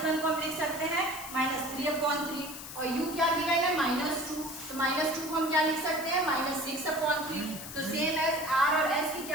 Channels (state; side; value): noise; left; hiss, 11 dB below the sound